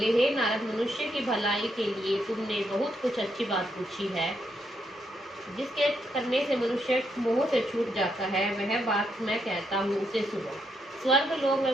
हे नारद, मनुष्य की भलाई के लिए तुमने बहुत कुछ अच्छी बात पूछी है। जिसके करने से मनुष्य मोह से छूट जाता है, वह बात मैं कहता हूँ, उसे सुनो। स्वर्ग लोक व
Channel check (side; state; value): both; normal; correlation 0.78